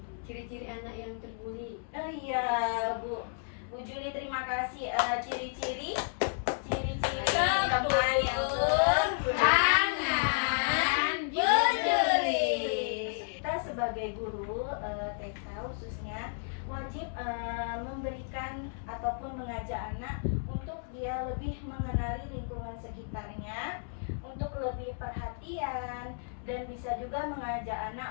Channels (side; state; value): right; silent; digital silence